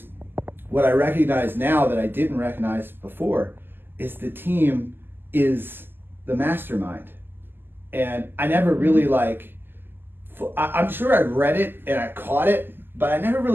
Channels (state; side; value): late; left; 0.096 ms